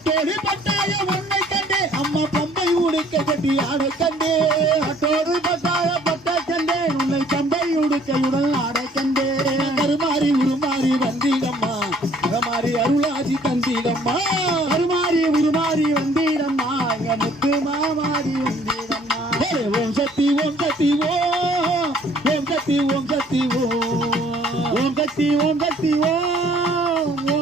பட்டாய உன்னை கண்டே அம்மா பம்பை உடுக்கை கட்டி ஆடை கண்டே பட்டோடு பட்டாய பட்டை கண்டே உன்னை பம்பை உடுக்கையுடன் ஆடை கண்டே கருமாறி உருமாறி வந்தீடம்மா மாறி அருளாசி தந்தீடம்மா கருமாறி உருமாறி வந்தீடம்மா எங்க முத்து மாமாரி வந்தீடம்மா ஓம் சக்தி ஓம் சக்தி ஓம் ஓம் சக்தி ஓம் சக்தி ஓம் சக்தி ஓம் சக்தி ஓம்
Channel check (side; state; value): both; normal; correlation 0.58